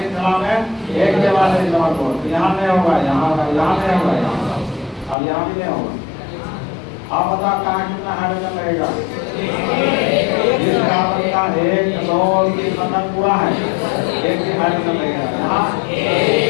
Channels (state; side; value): drops out; right; at 5.2 s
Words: में एक के बाद एक डबल बॉन्ड। यहाँ नहीं होगा, यहाँ नहीं होगा, यहाँ अब यहाँ भी नहीं होगा। आप बता कहाँ कितना हाइड्रोजन लगेगा, इस कार्बन का 1 2 3 बंधन पूरा है, एक ही हाइड्रोजन लगेगा। यहाँ